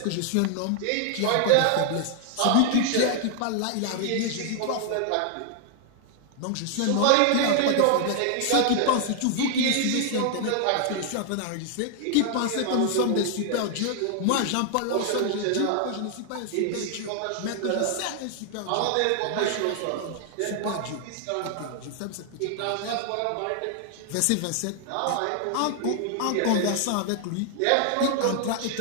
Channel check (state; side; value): different; both; correlation 0.00